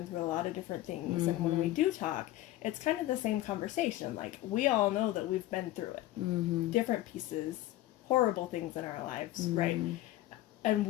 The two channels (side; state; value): right; quieter; 15.3 dB